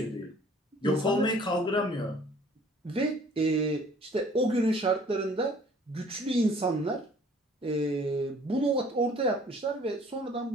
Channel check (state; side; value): normal; both; correlation 0.54